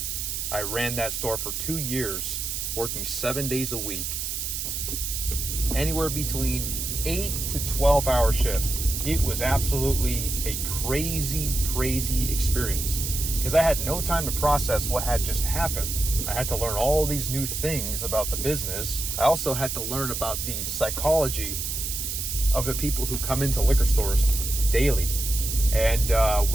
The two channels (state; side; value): noise; right; hiss, 3 dB below the sound